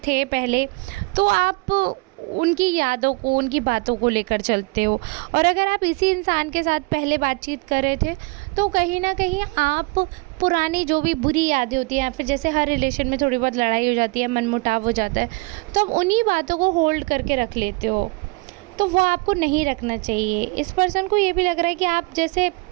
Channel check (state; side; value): quieter; left; 27.4 dB